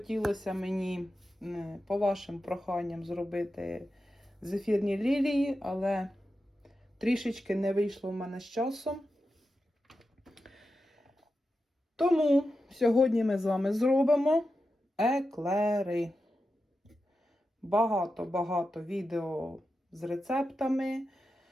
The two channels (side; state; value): both; normal; correlation 0.90